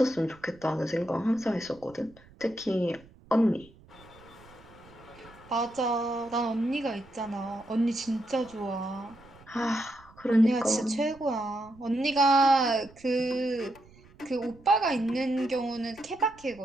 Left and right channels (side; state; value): right; noise; rumble, 25 dB below the sound